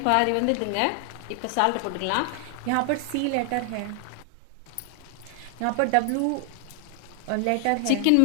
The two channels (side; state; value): both; different; correlation 0.00